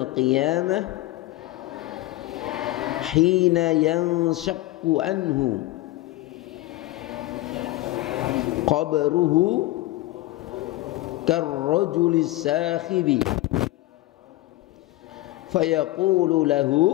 qiyamah hina yanshaqqu anhu qabruhu karrajulis sakhibi fayaqulu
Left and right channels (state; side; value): quieter; right; 17.7 dB